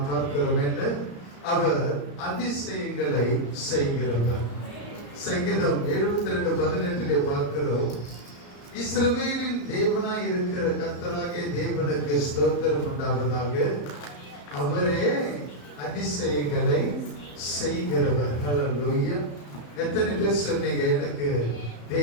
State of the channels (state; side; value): late; right; 34 ms